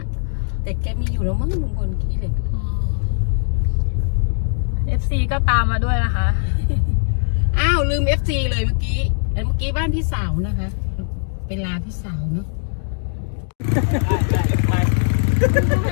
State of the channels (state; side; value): silent; right; digital silence